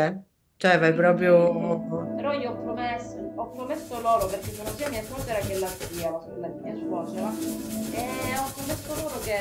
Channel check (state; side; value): identical; both; correlation 1.00